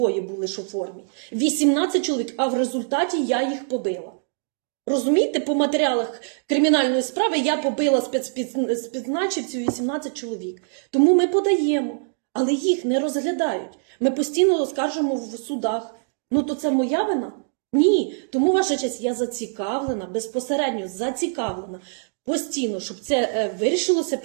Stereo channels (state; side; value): silent; left; digital silence